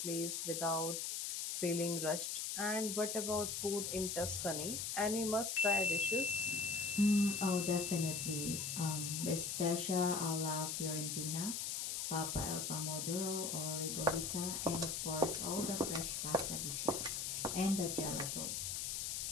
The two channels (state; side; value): noise; left; hiss, 2 dB below the sound